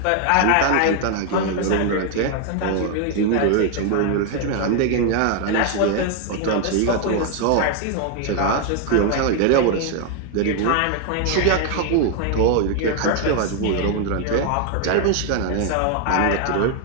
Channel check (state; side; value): different; both; correlation 0.01